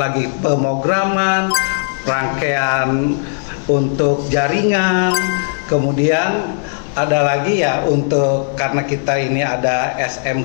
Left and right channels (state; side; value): silent; right; digital silence